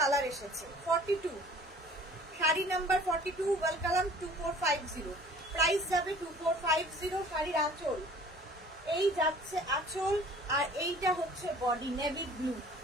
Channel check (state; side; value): normal; both; correlation 0.50